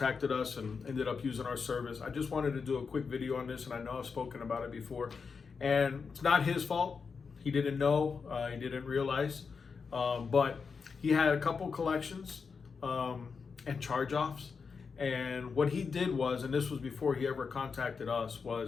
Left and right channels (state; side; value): quieter; right; 5.4 dB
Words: us and ended up using our service. I just wanted to do a quick video on this, and I know I've spoken about it before, and it's not his fault. He didn't know, he didn't realize, but he had a couple collections and charge-offs. And what he did was, and this was before he ever contacted us,